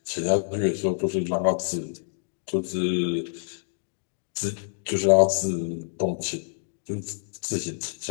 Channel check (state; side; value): silent; right; digital silence